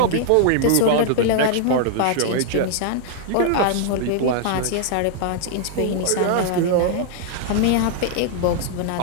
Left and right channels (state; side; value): different; both; correlation 0.00